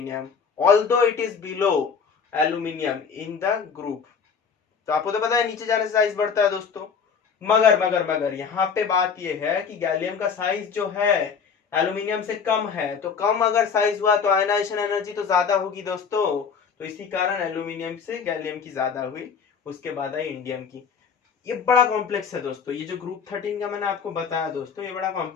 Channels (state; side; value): quieter; right; 6.3 dB